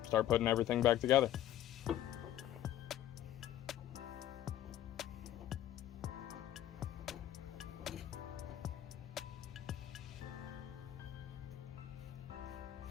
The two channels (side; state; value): right; quieter; 12.5 dB